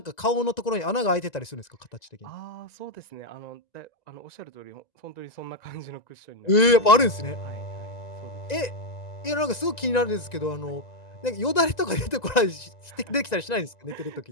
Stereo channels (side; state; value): right; late; 1.9 ms